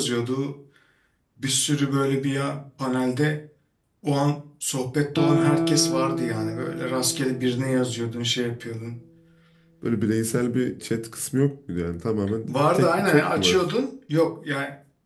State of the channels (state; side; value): identical; both; correlation 1.00